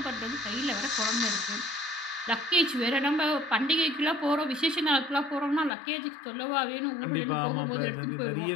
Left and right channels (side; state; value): right; drops out; at 5.7 s